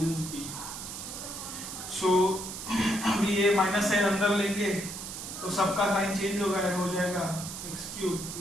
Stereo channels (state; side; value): noise; right; hiss, 8 dB below the sound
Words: सो अभी ये minus sign अंदर लेंगे तो सबका साइन चेंज हो जाएगा x cube